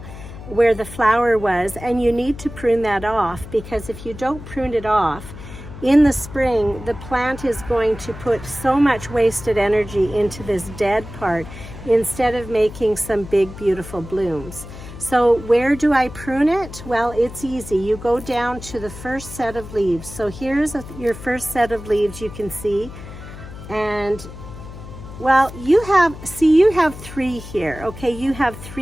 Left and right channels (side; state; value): left; noise; hum, 13 dB below the sound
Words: where the flower was, and you need to prune that off, because if you don't prune it off in the spring, the plant is going to put so much wasted energy into this dead part instead of making some big beautiful blooms. So where do I prune it? Well, it's easy. You go down to the first set of leaves. So here's your first set of leaves, you can see, and well, you have three here, okay? You have